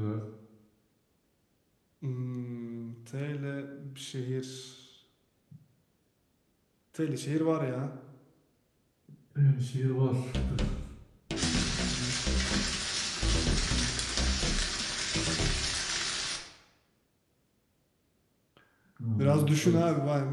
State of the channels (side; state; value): both; identical; correlation 1.00